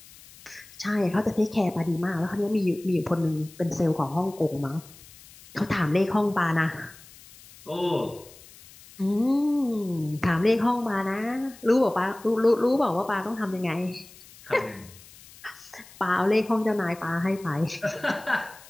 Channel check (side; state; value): left; noise; hiss, 22 dB below the sound